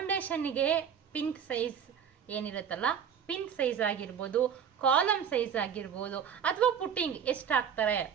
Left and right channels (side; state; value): left; quieter; 7.9 dB